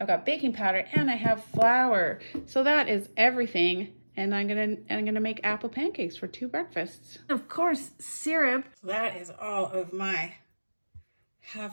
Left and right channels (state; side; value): inverted; both; correlation -1.00